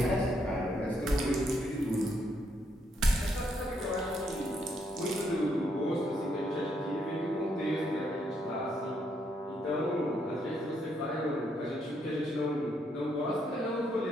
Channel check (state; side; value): normal; both; correlation 0.75